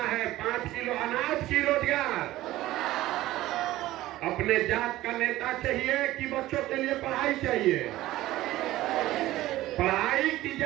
है, 5 किलो अनाज की रोजगार। अपने जात का नेता चाहिए कि बच्चों के लिए पढ़ाई चाहिए? पढ़ाई की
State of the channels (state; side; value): quieter; left; 16.1 dB